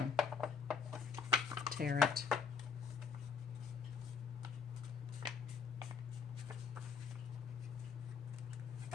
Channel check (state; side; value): quieter; right; 6.1 dB